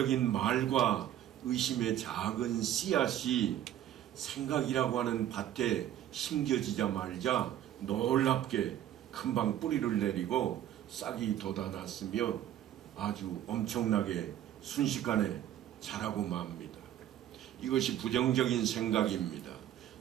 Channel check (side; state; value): left; quieter; 11.5 dB